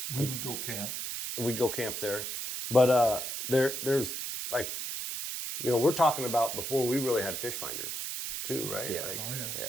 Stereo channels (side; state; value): right; noise; hiss, 4 dB below the sound